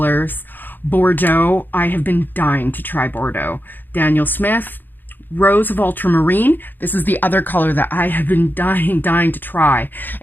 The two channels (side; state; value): right; late; 0.091 ms